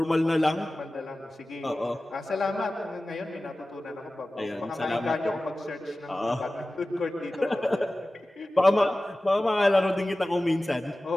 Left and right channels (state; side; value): normal; both; correlation 0.96